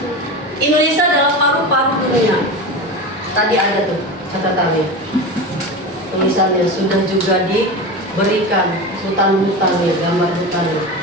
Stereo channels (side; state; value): both; normal; correlation 0.25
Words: Indonesia adalah paru-paru dunia. Tadi ada tuh catatannya. Tulisannya sudah juga diberikan hutan-hutannya, gambar hutannya.